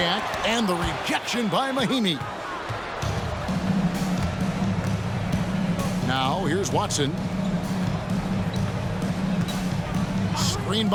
and the rejection by Mahimi. Now, here's Watson. Screen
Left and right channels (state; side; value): identical; both; correlation 1.00